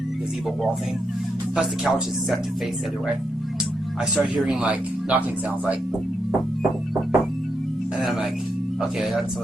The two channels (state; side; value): normal; both; correlation 0.82